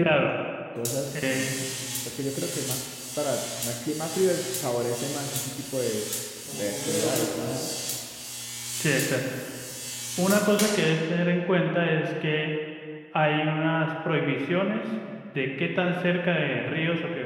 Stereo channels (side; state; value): both; identical; correlation 1.00